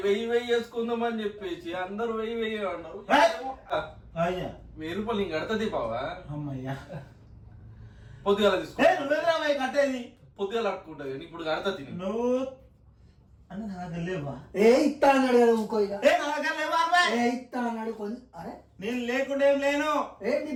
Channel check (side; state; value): both; identical; correlation 1.00